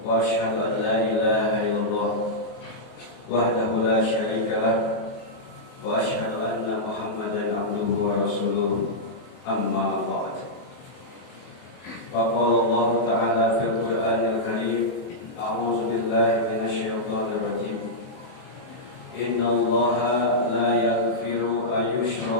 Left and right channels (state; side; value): late; right; 23 ms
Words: wa asyhadu an la ilaha illallah wahdahu la syarika lah wa asyhadu anna Muhammadan 'abduhu wa rasuluh amma ba'd. Faqala Allah ta'ala fil Qur'anil Karim a'udzu billahi minasy syaithanir rajim. Inna Allaha la yaghfiru an